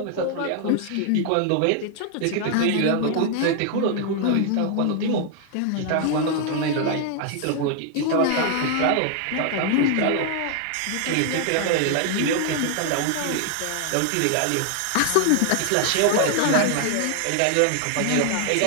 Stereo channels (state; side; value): different; both; correlation 0.00